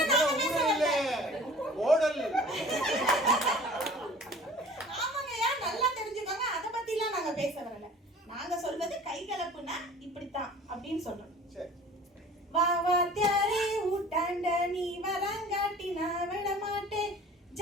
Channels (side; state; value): both; normal; correlation 0.45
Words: ஓடல். ஆமாங்கய்யா, நல்லா தெரிஞ்சுக்கோங்க. அத பத்தி எல்லாம் நாங்க பேச வரல. நாங்க சொல்றது கைகலப்புனா இப்படித்தான் அப்படின்னு சொல்றோம். வா வா தியாரே ஊட்டாண்ட நீ வரங்காட்டி நான் விட மாட்டேன்.